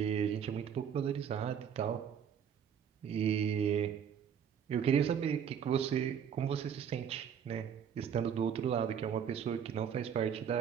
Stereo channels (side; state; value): left; quieter; 8.1 dB